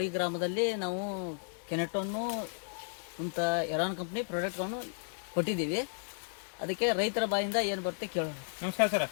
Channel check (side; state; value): right; silent; digital silence